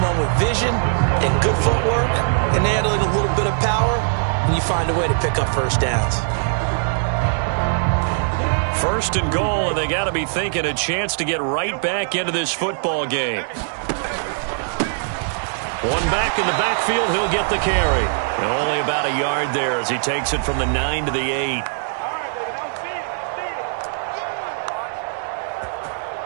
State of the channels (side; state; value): left; silent; digital silence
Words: with vision and good footwork and handling a little bit of power, and you find a way to pick up first downs. First and goal, and they got to be thinking a chance to get right back into this football game. One back in the backfield, he'll get the carry. And only about a yard there as he takes it from the 9 to the 8.